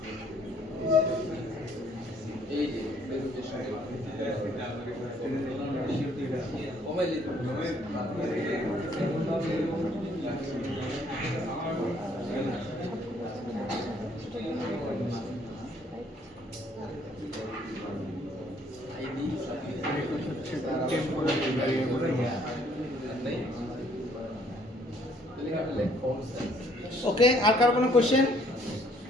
এই যে প্রেজেন্টেশন মোবাইল আইডি হচ্ছে টেম্পোরারি ভ্যারিয়েবল। নাই ফন্ট সাইজ ওকে, আর কারো কোনো কোশ্চেন?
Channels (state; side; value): normal; both; correlation 0.63